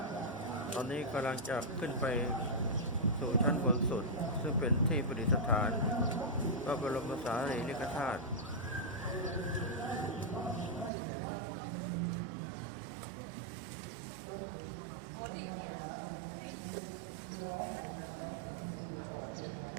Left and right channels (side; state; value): left; drops out; at 10.9 s